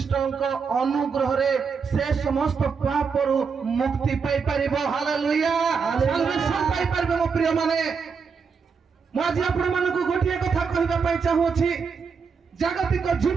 ଅନୁଗ୍ରହରେ ସେ ସମସ୍ତ ପାପରୁ ମୁକ୍ତି ପାଇପାରିବ। ହାଲେଲୁୟା। ସାଲ୍ଭେସନ୍ ପାଇପାରିବ। ମୋ ପ୍ରିୟ ମାନେ, ମୁଁ ଆଜି ଆପଣମାନଙ୍କୁ ଗୋଟିଏ କଥା କହିବା ପାଇଁ ଚାହୁଁଅଛି। ଜାଗତିକ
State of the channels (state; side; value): quieter; left; 5.7 dB